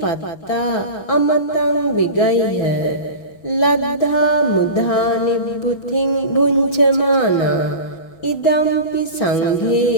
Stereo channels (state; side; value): late; right; 6.1 ms